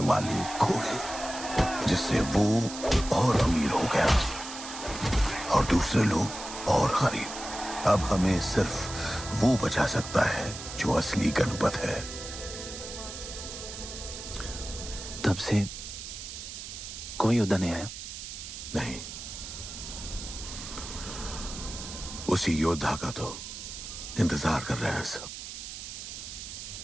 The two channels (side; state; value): right; noise; hiss, 9 dB below the sound